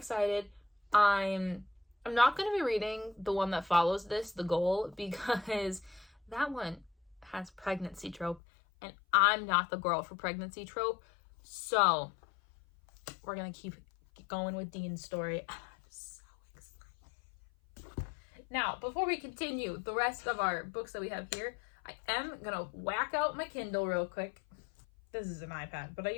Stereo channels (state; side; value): drops out; right; at 8.4 s